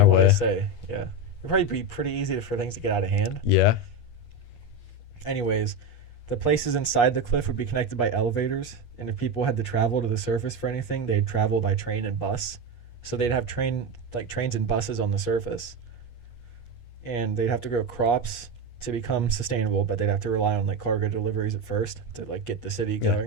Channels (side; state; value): right; late; 8.4 ms